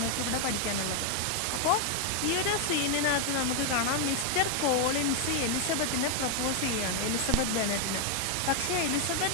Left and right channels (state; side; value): different; both; correlation 0.00